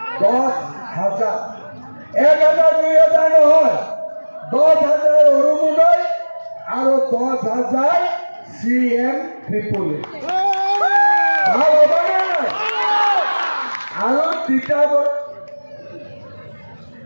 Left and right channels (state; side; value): inverted; both; correlation -1.00